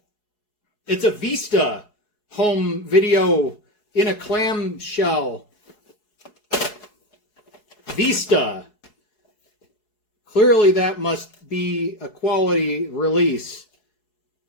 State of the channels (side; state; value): right; late; 4.7 ms